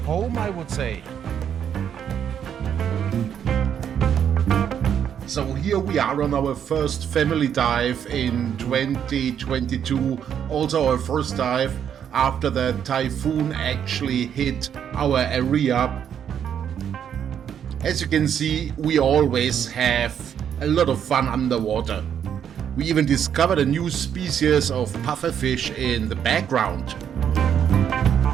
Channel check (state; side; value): quieter; left; 8.7 dB